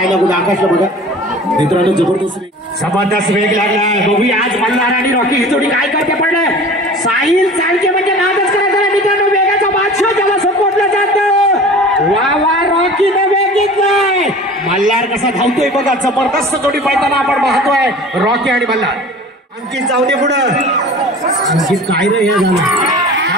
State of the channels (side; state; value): both; normal; correlation 0.41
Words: कुठे. आकाशला बघा मित्रांनो. जबरदस्त वेग लागलाय. बघूया आज मल्हार आणि रॉकी ही जोडी काय करते. पडलं साहिल चालके म्हणजे नादच करायचा मित्रांनो. वेगाचा बादशाह ज्याला सपोर्टला जातं. वा वा. रॉकीने वेग घेतलाय. मल्हार कसा धावतोय बघा. जबरदस्त जोडी पळताना आपण पाहतोय. रॉकी आणि मल्हार. अंकित जाऊ दे पुढं. अंकित काय रे हे झालं.